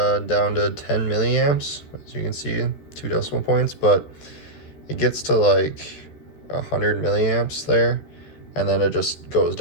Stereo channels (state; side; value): late; right; 14 ms